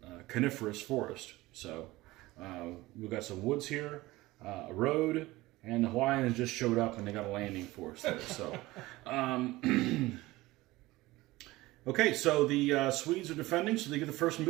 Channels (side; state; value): left; quieter; 19.1 dB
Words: coniferous forest. So we've got some woods here, a road, and the Hawaiians just showed up and they got a landing force there. So, okay, so the Swedes are defending, so they get the first